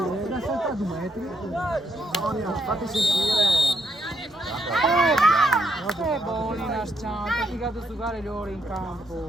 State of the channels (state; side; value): normal; both; correlation 0.76